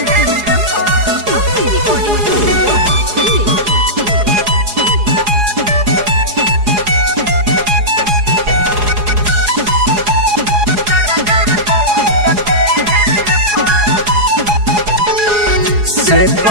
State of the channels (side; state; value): left; late; 4.8 ms